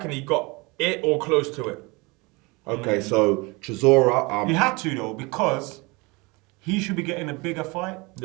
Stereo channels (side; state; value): left; quieter; 26.1 dB